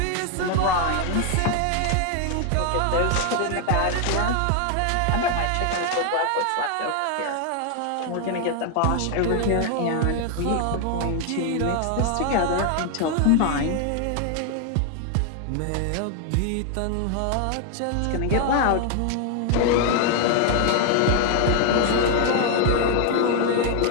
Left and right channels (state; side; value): different; both; correlation 0.00